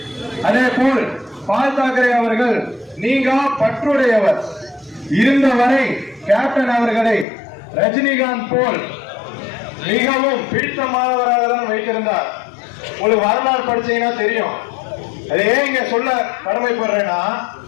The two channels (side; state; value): right; drops out; at 7.2 s